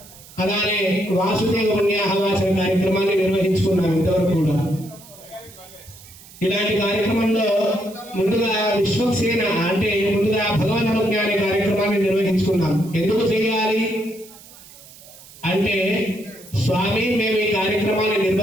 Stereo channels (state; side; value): noise; right; hiss, 21 dB below the sound